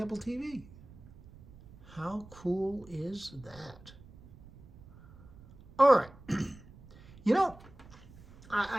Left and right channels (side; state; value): right; noise; rumble, 21 dB below the sound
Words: TV. How cool is that? All right. You know,